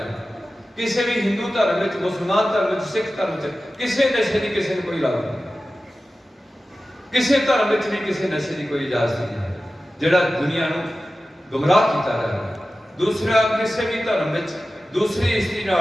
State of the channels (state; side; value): normal; both; correlation 0.95